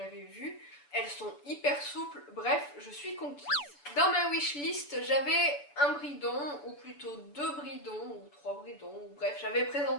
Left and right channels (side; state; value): right; late; 6.9 ms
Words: vu. Elles sont hyper souples, bref, je suis conquise. Dans ma wishlist, j'avais un bridon, ou plutôt 2 bridons, ou 3 bridons, ou bref, j'avais